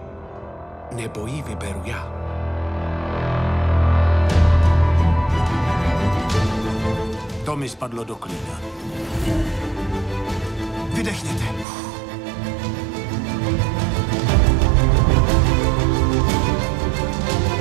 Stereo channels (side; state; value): left; drops out; at 11.7 s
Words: Nebo ji vyberu já. To mi spadlo do klína. Vydechněte.